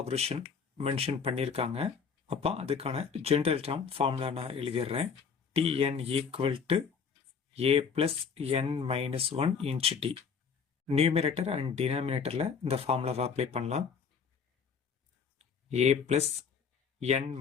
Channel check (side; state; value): right; quieter; 6.1 dB